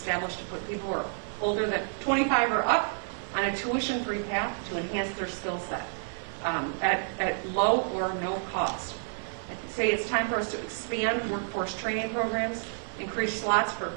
to put people who are older than 25 or up on a tuition-free path to enhance their skill set at low or no cost. I say it's time for us to expand workforce training programs, increase slots for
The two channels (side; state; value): left; silent; 58 dB below the other